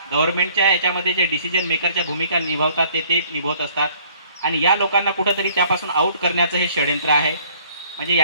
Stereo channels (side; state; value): both; inverted; correlation -0.59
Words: गव्हर्नमेंटच्या याच्यामध्ये जे डिसिजन मेकरच्या भूमिका निभावतात ते निभावत असतात आणि या लोकांना कुठंतरी त्यापासून आउट करण्याचं हे षडयंत्र आहे. म्हणजे